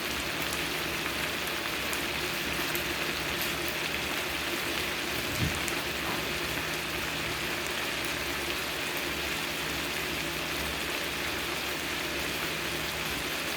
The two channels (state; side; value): identical; both; correlation 1.00